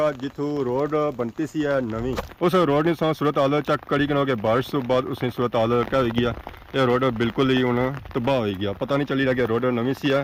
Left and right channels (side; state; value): both; identical; correlation 1.00